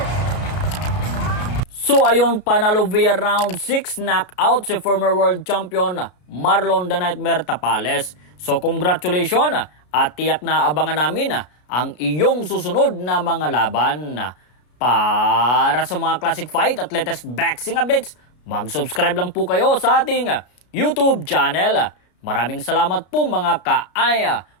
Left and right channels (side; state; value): right; late; 33 ms